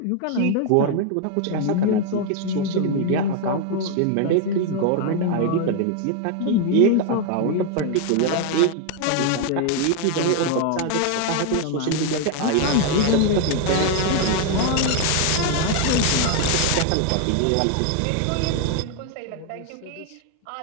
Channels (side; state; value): both; different; correlation 0.00